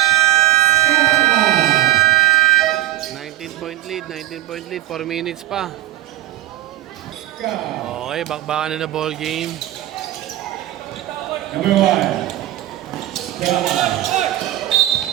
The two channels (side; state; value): left; quieter; 14.8 dB